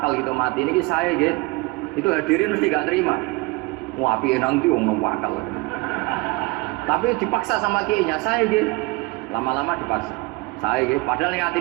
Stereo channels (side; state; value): left; quieter; 24.2 dB